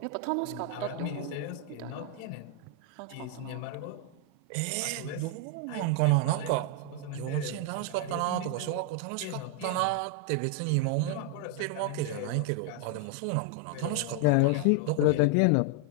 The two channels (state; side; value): different; both; correlation 0.00